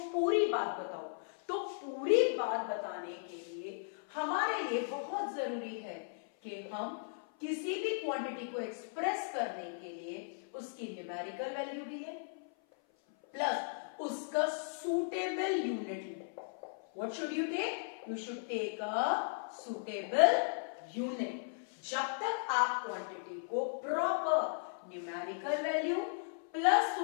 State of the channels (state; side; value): silent; right; 53 dB below the other